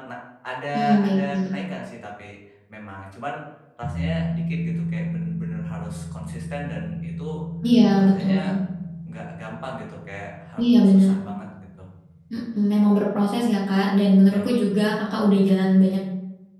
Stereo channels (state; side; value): identical; both; correlation 1.00